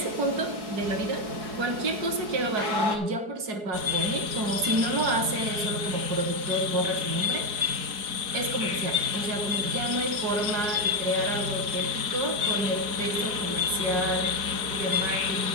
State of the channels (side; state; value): left; late; 4.8 ms